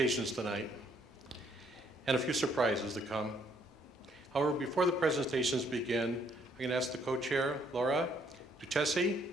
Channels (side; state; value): both; normal; correlation 0.68